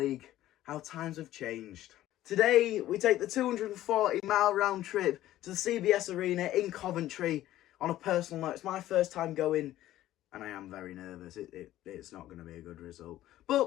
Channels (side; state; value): right; quieter; 14.1 dB